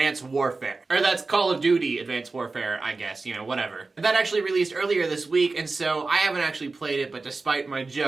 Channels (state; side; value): quieter; left; 3.8 dB